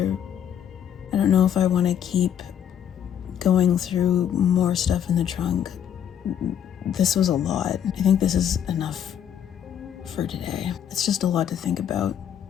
I don't know if I want to keep going through more stuff in the trunk. This was a lot. I think this is enough for today. It's just a lot to think about.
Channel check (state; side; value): quieter; right; 9.3 dB